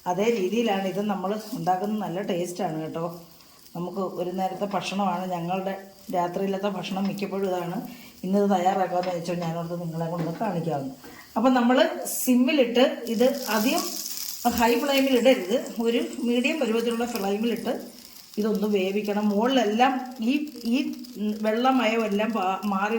അതേ രീതിയിലാണ് ഇത് നമ്മൾ ഉണ്ടാക്കുന്നത്. നല്ല ടേസ്റ്റാണ് കേട്ടോ. നമുക്ക് ഒരു നേരത്തെ ഭക്ഷണമാണ്, ഞങ്ങളുടെ രാത്രിയിലത്തെ ഭക്ഷണം മിക്കപ്പോഴും ഇതാണ്. ഇന്നത് തയ്യാറാക്കാമെന്ന് വെച്ചാൽ ഞാനോർത്ത് നിങ്ങളെ കൊണ്ട് കാണിക്കാവുന്നു. അപ്പം നമ്മൾ സിമ്മിലിട്ട് ഇത് അധികം ഹൈ ഫ്ലെയിമിൽ ഇടരുത്, ഒരു മീഡിയം പരുവത്തിലുള്ള ഫ്ലെയിമിലിട്ട് ഇതൊന്ന് വേവിക്കണം. മുകളിലെല്ലാം ഈ വെള്ളമയമെല്ലാം മാറി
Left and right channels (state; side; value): identical; both; correlation 1.00